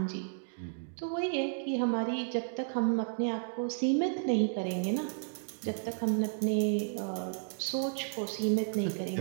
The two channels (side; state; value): left; silent; digital silence